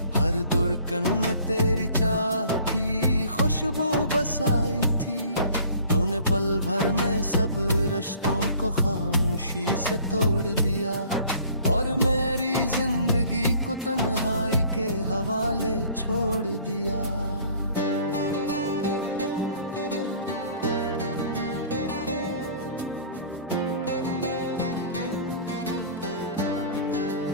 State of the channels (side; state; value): both; inverted; correlation -0.51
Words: हर धड़कन में तेरी चाह की खुशबू बसाई थी। तूने पल भर में सब रिश्तों को खामोशी से तोड़ दिया और मेरी जिंदगी को तन्हाई के हवाले छोड़ दिया।